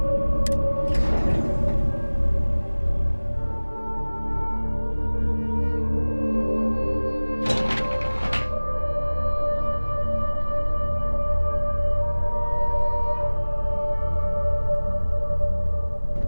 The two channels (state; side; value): inverted; both; correlation -1.00